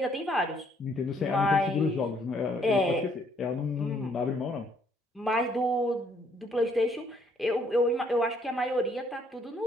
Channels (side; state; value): both; normal; correlation 0.67